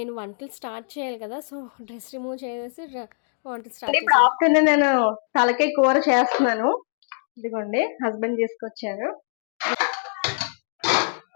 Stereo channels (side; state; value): right; silent; digital silence